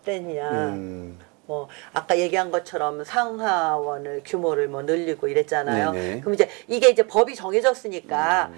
뭐 아까 얘기한 것처럼 상하원을 규모를 뭐 늘리고 이랬잖아요. 네네. 그럼 이게 이제 법이 정해졌으니까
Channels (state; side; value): quieter; left; 30.2 dB